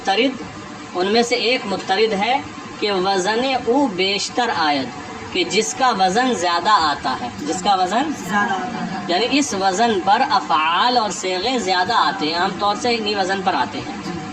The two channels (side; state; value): both; identical; correlation 1.00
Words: ان میں سے ایک مضطرد ہے کہ وزن او بیشتر آید، کہ جس کا وزن زیادہ آتا ہے. جس کا وزن یعنی اس وزن پر افعال اور صیغے زیادہ آتے ہیں، عام طور سے انہی وزن پر آتے ہیں.